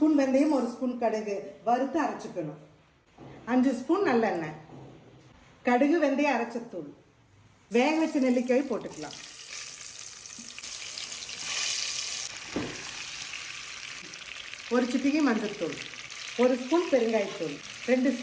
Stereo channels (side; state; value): both; identical; correlation 1.00